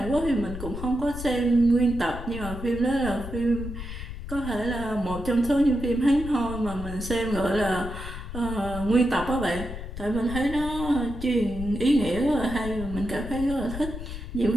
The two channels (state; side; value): noise; left; rumble, 8 dB below the sound